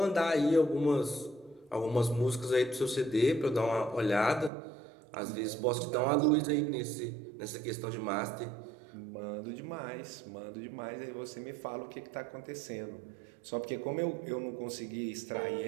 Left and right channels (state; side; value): drops out; left; at 4.5 s